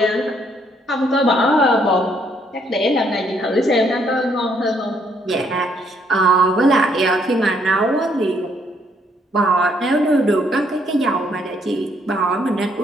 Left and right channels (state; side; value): normal; both; correlation 0.70